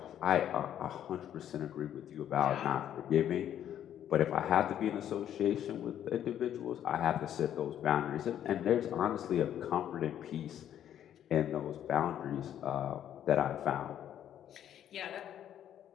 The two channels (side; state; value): right; quieter; 10.5 dB